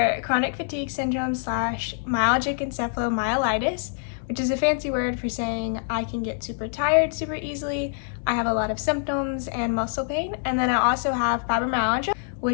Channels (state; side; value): silent; right; digital silence